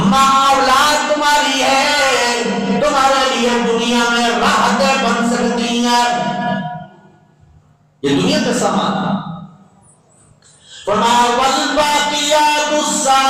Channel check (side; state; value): both; identical; correlation 1.00